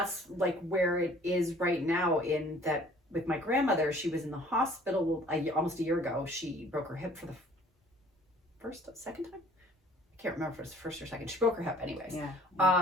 like where it is right now, in that with my grandmother, she was in the hospital almost a year ago. She broke her hip for the second time. I can't remember if it was the first or second. She broke her hip anyways.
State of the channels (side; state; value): both; normal; correlation 0.54